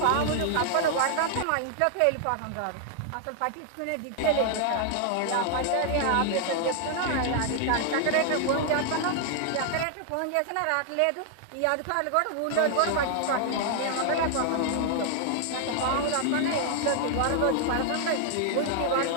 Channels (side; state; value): both; different; correlation 0.00